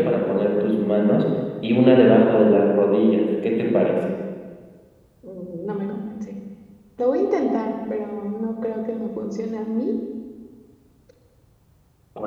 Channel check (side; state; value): both; identical; correlation 1.00